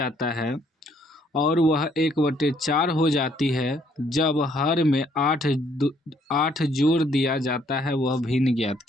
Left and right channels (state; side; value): normal; both; correlation 0.66